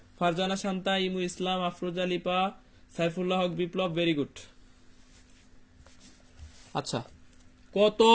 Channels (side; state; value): both; identical; correlation 1.00